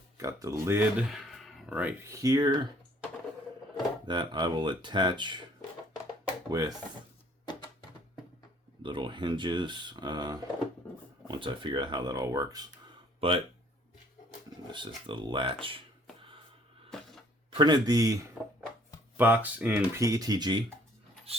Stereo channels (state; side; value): normal; both; correlation 0.60